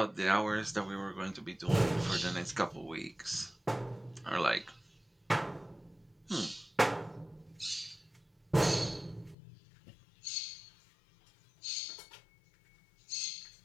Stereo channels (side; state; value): right; drops out; at 9.3 s